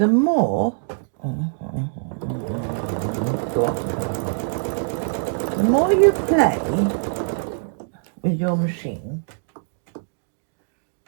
more the more you play with your machine,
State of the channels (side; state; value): left; silent; digital silence